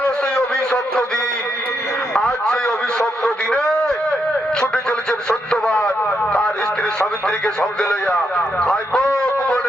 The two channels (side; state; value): both; normal; correlation 0.80